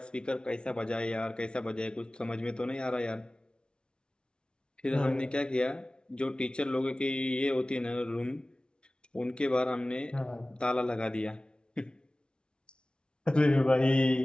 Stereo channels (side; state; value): right; late; 0.056 ms